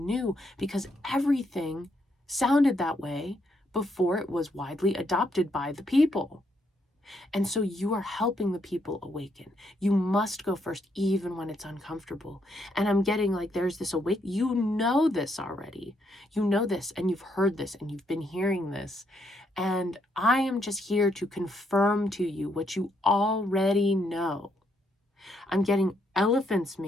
because everything sounded that way before it was widely adopted by the people. And so you are helping the people awaken. You must go first, even when it's uncomfortable. And I'm getting like there's this you know this already. You know this, and you've heard this, and you've been hearing this. And I am just here to confirm to you what you already know. I'm getting elephants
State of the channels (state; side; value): normal; both; correlation 0.75